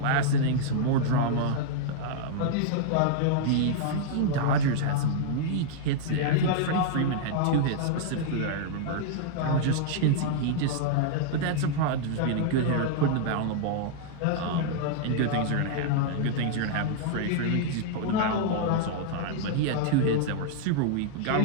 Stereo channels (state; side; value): different; both; correlation -0.01